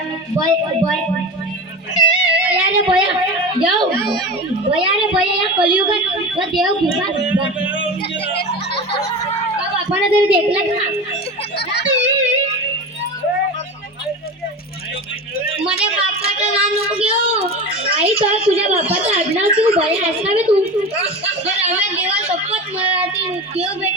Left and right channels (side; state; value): both; normal; correlation 0.27